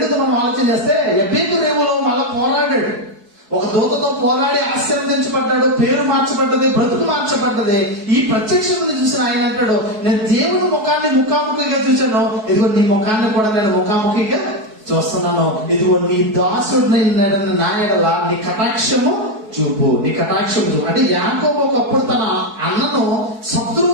మనం ఆలోచన చేస్తే ఎబ్బెక్కి రేవులో మళ్ళా పోరాడాడు, ఒక దూతతో పోరాడి ఆశీర్వదించబడ్డాడు, పేరు మార్చబడ్డది, బ్రతుకు మార్చబడ్డది. ఈ ప్రత్యక్షతను చూసిన ఆయన అంటాడు, నేను దేవుని ముఖాన్ని ముఖాముఖిగా చూశాను, ఇదిగో నీ ముఖాన్ని కూడా నేను ముఖాముఖిగా చూస్తున్నాను, ఇదిగో నీ దాసుడిని నా ఎడల నీ కటాక్షము చూపు. అంటే యాకోబు ఒకప్పుడు తన అన్నను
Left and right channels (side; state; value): left; late; 4.6 ms